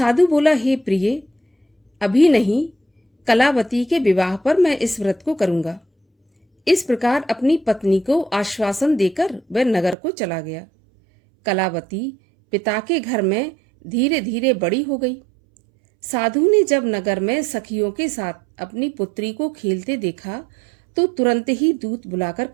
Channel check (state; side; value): drops out; left; at 10.0 s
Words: बोला, हे प्रिय, अभी नहीं, कलावती के विवाह पर मैं इस व्रत को करूंगा। इस प्रकार अपनी पत्नी को आश्वासन देकर वह नगर को चला गया। कलावती पिता के घर में धीरे धीरे बड़ी हो गई। साधु ने जब नगर में सखियों के साथ अपनी पुत्री को खेलते देखा तो तुरंत ही दूत बुलाकर